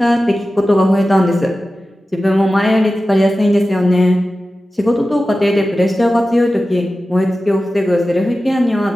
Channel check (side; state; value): both; normal; correlation 0.95